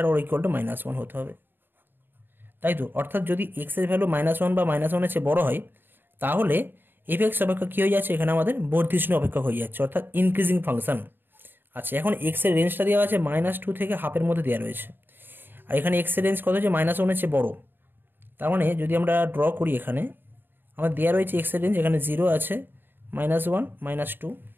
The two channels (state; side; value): late; left; 0.096 ms